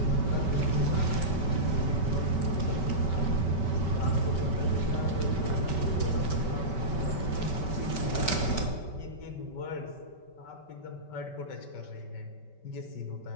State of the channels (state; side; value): late; right; 5.2 ms